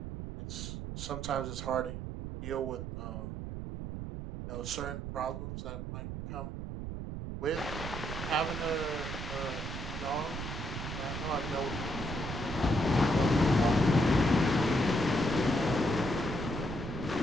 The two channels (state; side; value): noise; right; rumble, 6 dB below the sound